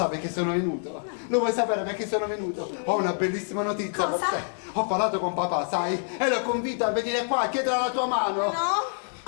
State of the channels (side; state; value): right; silent; 60 dB below the other